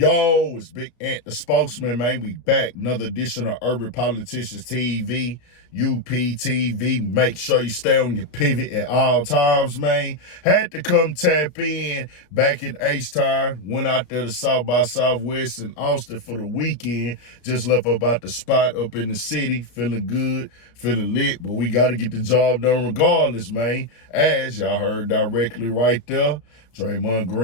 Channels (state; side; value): late; right; 32 ms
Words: it's Big Ant, the spokesman, man. We back. Another edition of Urban Politicians TV, UPTV. Make sure you stay on your pivot at all times, man. Had to come tap in back in H-Town. Went out there to South by Southwest in Austin for the weekend. Just left about the spot up in the city. Feeling good, feeling lit. But we got to get the job done regardless, man. As y'all heard directly right there, Draymond